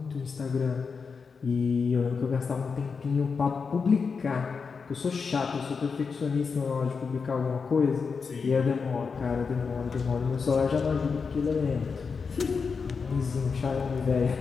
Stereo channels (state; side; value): quieter; right; 5.3 dB